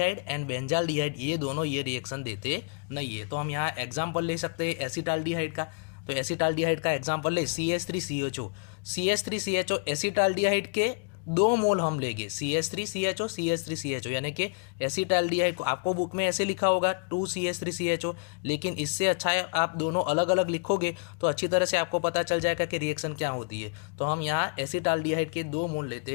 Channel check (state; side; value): quieter; right; 38.7 dB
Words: and benzaldehyde ये दोनों ये रिएक्शन देते नहीं है। तो हम यहाँ एग्जाम्पल ले सकते हैं एसिटाल्डिहाइड का। तो एसिटाल्डिहाइड का एग्जाम्पल ले CH3CHO, CH3CHO एसिटाल्डिहाइड के 2 मोल हम लेंगे CH3CHO CH3CHO यानी कि एसिटाल्डिहाइड को आपको बुक में ऐसे लिखा होगा 2CH3CHO, लेकिन इससे अच्छा है आप दोनों अलग अलग लिखोगे तो अच्छी तरह से आपको पता चल जाएगा कि रिएक्शन क्या होती है। तो हम यहाँ एसिटाल्डिहाइड के 2 मोल